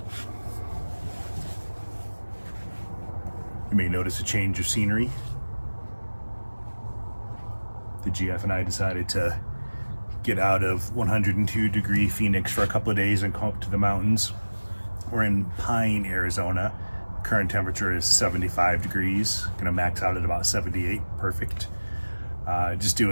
You may notice a change of scenery. The GF and I decided to get out of 102 degree Phoenix for a couple of days and come up to the mountains. We're in Pine, Arizona. Current temperature is 75 degrees. Gonna max out at about 78, perfect. Just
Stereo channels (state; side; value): inverted; both; correlation -1.00